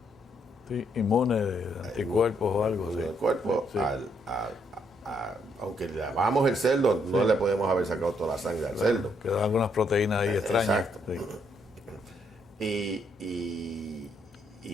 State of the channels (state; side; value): normal; both; correlation 0.73